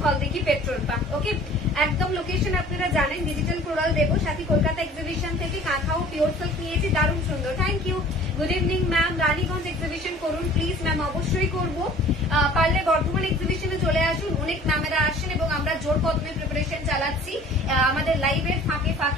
Haldighi petrol pump. Okay, একদম লোকেশন আপনারা জানেন, ডিজিটাল কোরাল দেবো। সাথে কলকাতা এক্সিবিশন থেকে কাঁথাও পিওর সিল্ক নিয়েছি, দারুণ সুন্দর, thank you. Good evening ma'am, Raniganj exhibition করুন প্লিজ ম্যাম, অবশ্যই করবো। পারলে বর্ধমান এক্সিবিশনে চলে আসুন, অনেক ম্যামেরা আসেন এবং আমরা জোর কদমে প্রিপারেশন চালাচ্ছি আমাদের লাইভের ফাঁকে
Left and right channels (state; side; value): normal; both; correlation 0.48